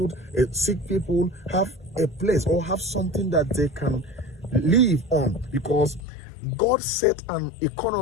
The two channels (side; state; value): right; drops out; at 6.0 s